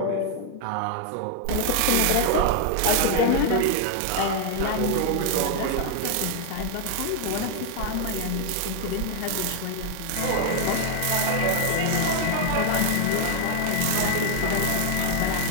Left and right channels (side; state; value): both; different; correlation 0.00